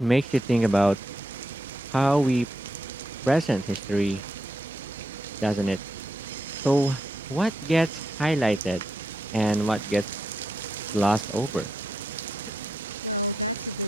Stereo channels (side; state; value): right; noise; hum, 25 dB below the sound